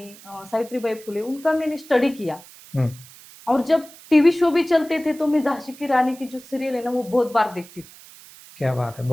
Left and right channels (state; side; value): noise; right; hiss, 21 dB below the sound